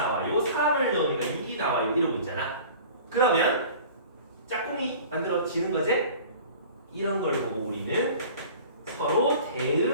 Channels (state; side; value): inverted; both; correlation -0.44